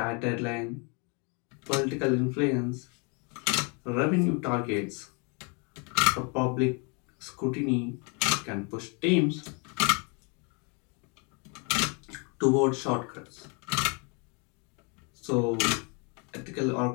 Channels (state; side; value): quieter; right; 33.9 dB